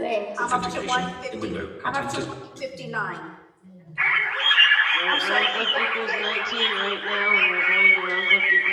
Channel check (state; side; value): identical; both; correlation 1.00